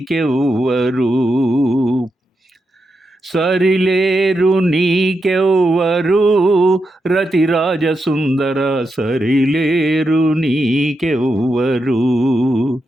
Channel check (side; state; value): both; normal; correlation 0.86